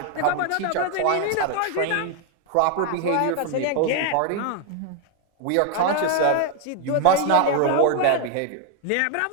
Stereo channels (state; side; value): different; both; correlation 0.01